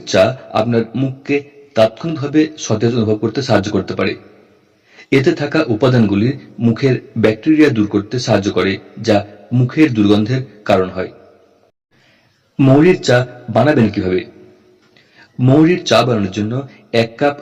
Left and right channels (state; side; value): identical; both; correlation 1.00